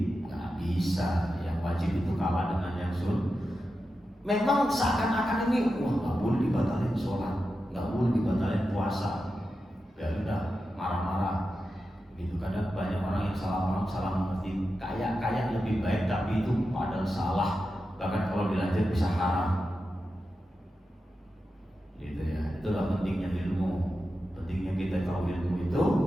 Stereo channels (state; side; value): normal; both; correlation 0.90